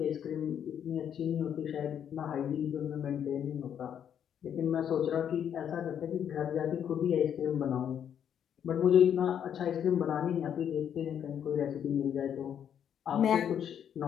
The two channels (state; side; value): quieter; right; 8.9 dB